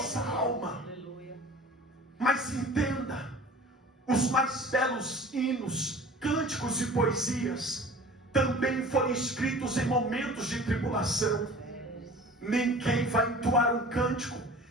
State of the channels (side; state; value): both; normal; correlation 0.43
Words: alma. Mas entenda, os mais belos hinos, cânticos e poesias também foram escritos em momentos de tribulação. Ninguém vai entoar um cântico